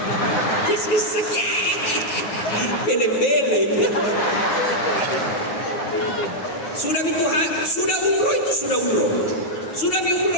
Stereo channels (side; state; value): right; late; 9.4 ms